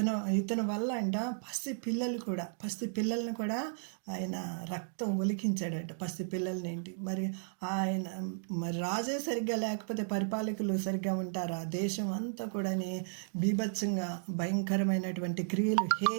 వల్ల అంట పసి పిల్లల్ని కూడా ఆయన రక్తం ఒలికించాడట. పసి పిల్లల్ని ఏంటి మరి ఆయన రాజే సరిగ్గా లేకపోతే పరిపాలకులు సరిగ్గా ఉంటారా? దేశం అంతా కూడా బీభత్సంగా భయంకరమైనటువంటి క్రియలు,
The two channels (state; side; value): silent; left; digital silence